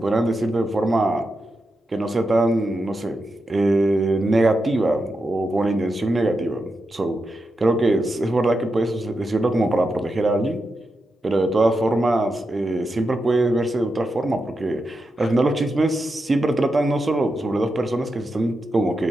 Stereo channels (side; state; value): both; normal; correlation 0.87